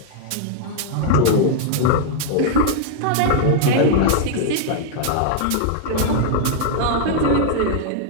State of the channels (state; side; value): different; both; correlation -0.01